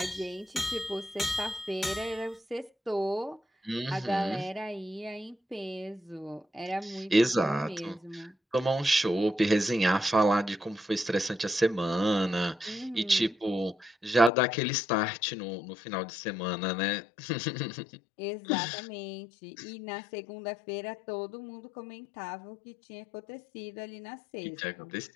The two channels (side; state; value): right; drops out; at 14.3 s